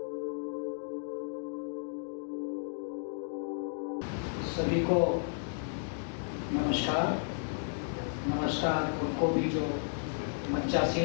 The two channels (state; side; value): silent; right; digital silence